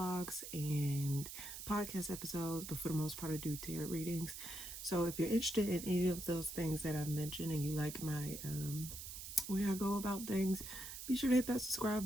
and podcast episodes, but for the most part I do tarot readings. So if you're interested in any of those things that I've mentioned and you like my way I go about things, be sure to hit that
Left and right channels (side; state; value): right; noise; hiss, 9 dB below the sound